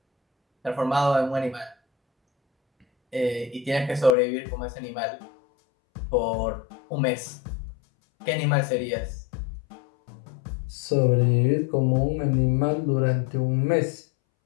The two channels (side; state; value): right; drops out; at 4.2 s